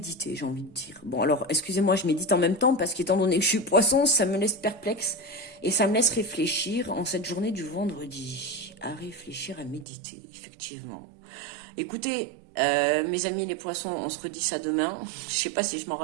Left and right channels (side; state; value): left; drops out; at 9.9 s